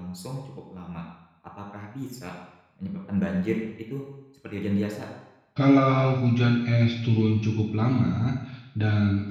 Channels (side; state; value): both; identical; correlation 1.00